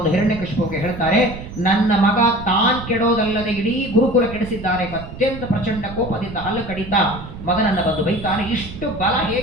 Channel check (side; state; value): right; noise; rumble, 12 dB below the sound